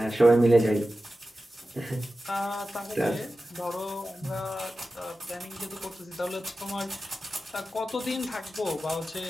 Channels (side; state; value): both; normal; correlation 0.94